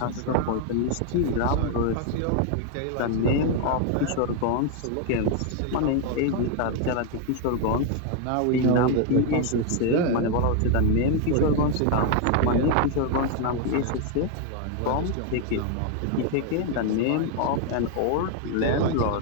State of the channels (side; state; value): both; different; correlation 0.01